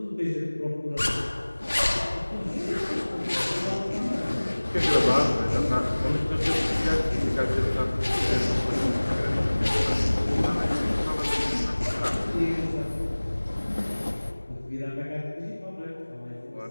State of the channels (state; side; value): inverted; both; correlation -1.00